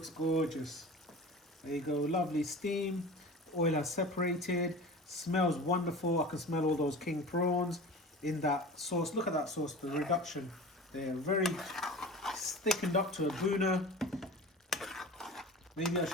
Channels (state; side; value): normal; both; correlation 0.36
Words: gorgeous. There you go, lovely steam. Oil has separated. Smells wonderful. I can smell all those king prawns in that sauce. Look at that sauce, the reduction. They're very thickened up to a buna. Maybe I